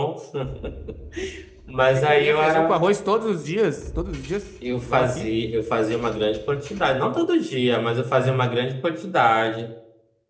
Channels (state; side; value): identical; both; correlation 1.00